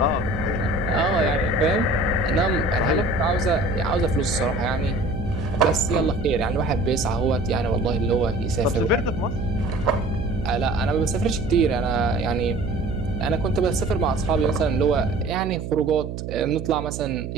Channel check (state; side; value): noise; right; hum, 7 dB below the sound